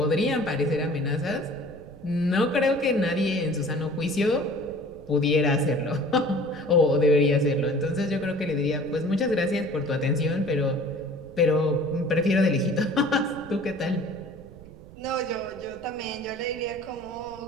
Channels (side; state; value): right; noise; rumble, 20 dB below the sound